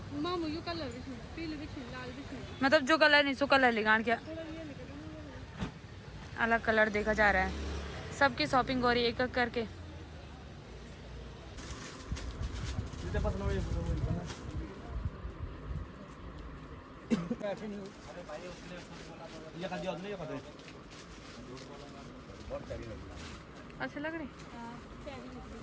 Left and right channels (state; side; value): identical; both; correlation 1.00